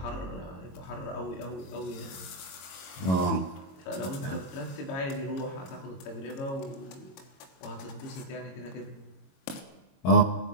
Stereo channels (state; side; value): late; right; 22 ms